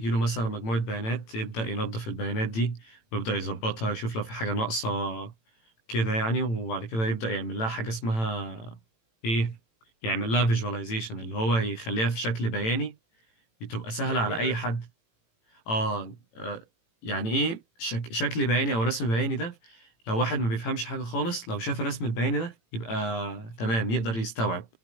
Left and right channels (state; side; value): late; right; 18 ms